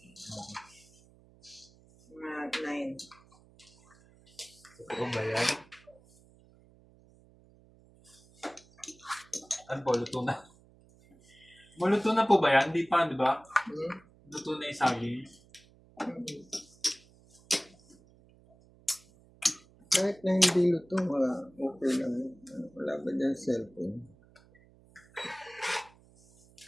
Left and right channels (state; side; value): noise; right; hum, 27 dB below the sound